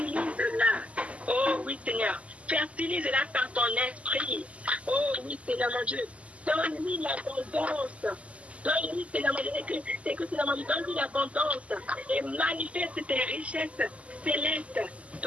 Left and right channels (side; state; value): left; late; 0.065 ms